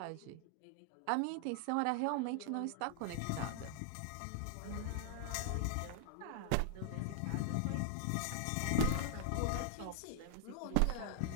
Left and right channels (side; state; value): both; different; correlation 0.00